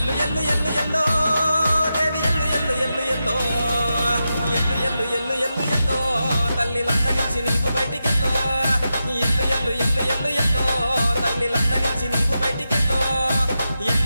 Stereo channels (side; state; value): both; inverted; correlation -0.89